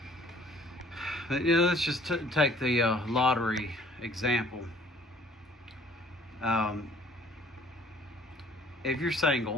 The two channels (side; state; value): both; normal; correlation 0.56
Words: But, let's just take the lottery example. If you're